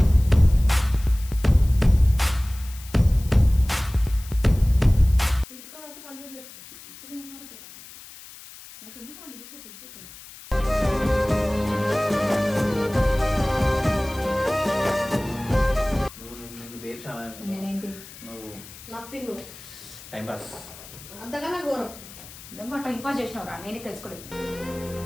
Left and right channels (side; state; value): left; noise; hiss, 17 dB below the sound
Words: ఇక్కడే ఉన్నాడు కదా, నాకు ఎందుకు వాడిని చూసే సిగ్గే కదా. నేనేంటి నథింగ్ టైం పాస్ అంతకన్నా ఘోరం. నిజంగా టైం పాస్ చేసినవరా, నేనే తెలుసుకోలేదు.